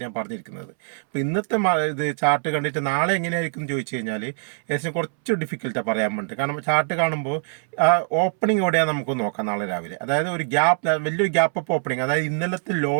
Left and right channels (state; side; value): silent; left; 63 dB below the other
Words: ഞാൻ പറഞ്ഞിരിക്കുന്നത്. അപ്പോൾ ഇന്നത്തെ ഇത് ചാർട്ട് കണ്ടിട്ട് നാളെ എങ്ങനെയായിരിക്കും എന്ന് ചോദിച്ചു കഴിഞ്ഞാൽ ഏകദേശം കുറച്ച് ഡിഫിക്കൽട്ടാണ് പറയാൻ വേണ്ടി. കാരണം ചാർട്ട് കാണുമ്പോൾ ആ ഓപ്പണിംഗ് എവിടെയാണ് നമുക്ക് നോക്കാം നാളെ രാവിലെ. അതായത് ഒരു ഗ്യാപ്പ്, വലിയൊരു ഗ്യാപ്പ് അപ്പ് ഓപ്പണിംഗ്, അതായത് ഇന്നലത്തെ